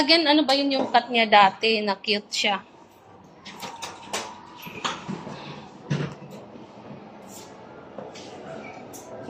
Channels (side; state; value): both; identical; correlation 1.00